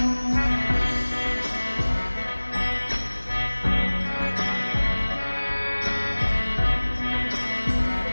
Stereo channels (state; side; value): inverted; both; correlation -1.00